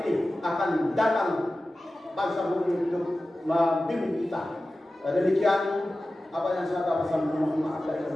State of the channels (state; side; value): normal; both; correlation 0.95